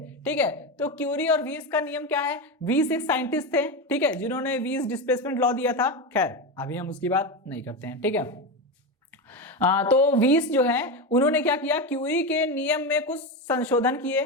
ठीक है, तो क्यूरी और वीन्स का नियम क्या है? वीन्स एक साइंटिस्ट थे, ठीक है, जिन्होंने वीन्स डिस्प्लेसमेंट लॉ दिया था। खैर अभी हम उसकी बात नहीं करते हैं। ठीक है, तो वीस जो है उन्होंने क्या किया? क्यूरी के नियम में कुछ संशोधन किए।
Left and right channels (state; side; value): normal; both; correlation 0.16